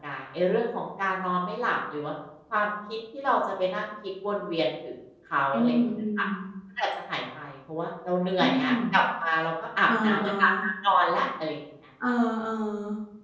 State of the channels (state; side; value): identical; both; correlation 1.00